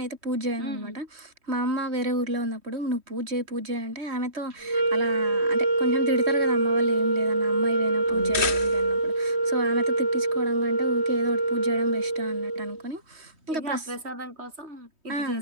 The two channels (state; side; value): late; left; 3.1 ms